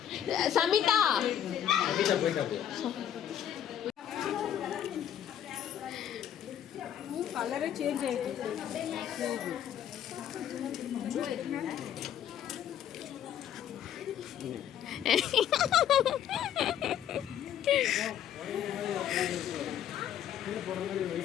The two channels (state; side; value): quieter; right; 10.1 dB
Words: சமிதா கலரே சேஞ்ச் ஆயிடுச்சு.